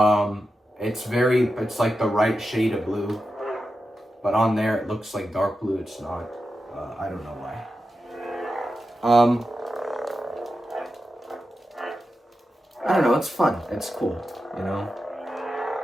It's like the right shade of blue. But on there it looks like dark blue. It's not. I don't know why. I don't know, it's fun. It's cool, you know?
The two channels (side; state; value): both; normal; correlation 0.90